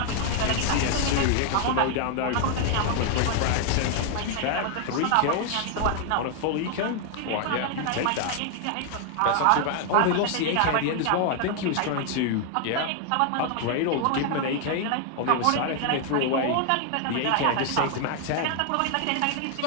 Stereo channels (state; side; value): different; both; correlation 0.00